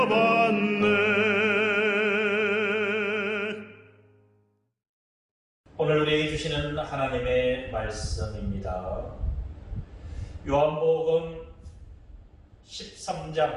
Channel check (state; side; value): identical; both; correlation 1.00